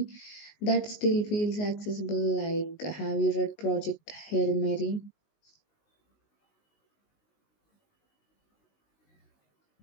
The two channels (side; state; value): right; late; 19 ms